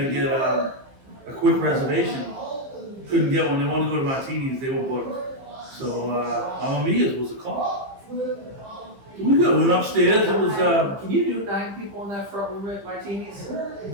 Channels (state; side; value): late; left; 15 ms